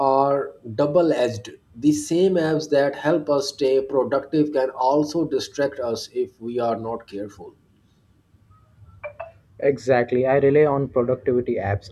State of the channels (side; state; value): both; identical; correlation 1.00